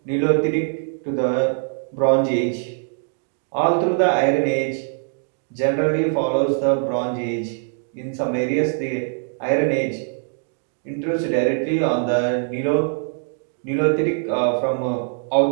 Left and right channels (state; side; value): silent; left; 64 dB below the other